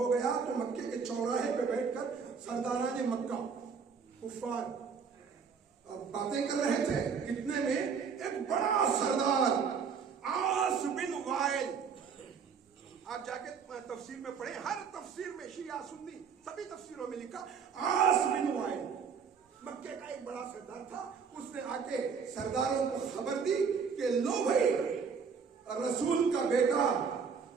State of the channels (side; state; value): left; quieter; 6.1 dB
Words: گیا تو مکے کے چوراہے پہ بیٹھ کر سرداران مکہ کفار باتیں کر رہے تھے. اتنے میں ایک بڑا سردار عاص بن آپ جا کے تفسیر میں پڑھیں، ہر تفسیر میں شیعہ سنی سبھی تفسیروں میں لکھا عاص بن وائل مکے کا ایک بڑا سردار تھا، اس نے آ کے سرداروں کو خبر دی کہ لو بھائی رسول کا بیٹا